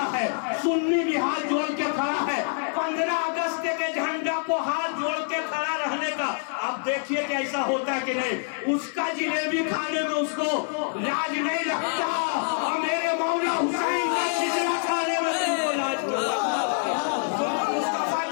है, सुन्नी भी हाथ जोड़ के खड़ा है। 15 अगस्त के झंडा को हाथ जोड़ के खड़ा रहने का अब देखिए कि ऐसा होता है कि नहीं। उसका जिलेबी खाने में उसको लाज नहीं लगता और मेरे मौला हुसैन का खिचड़ा खाने में तुमको लाज लगता। मुस्तफा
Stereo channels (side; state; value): right; silent; 61 dB below the other